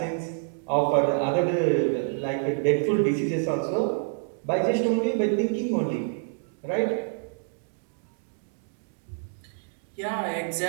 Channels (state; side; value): silent; left; digital silence